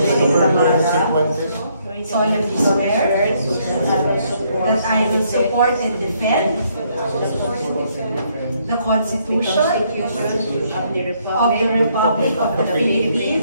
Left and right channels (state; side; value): inverted; both; correlation -0.70